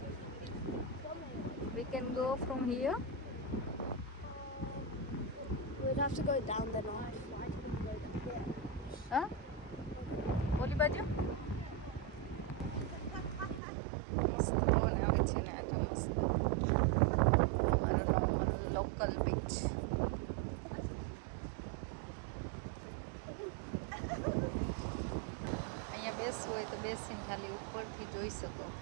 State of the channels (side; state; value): left; drops out; at 13.6 s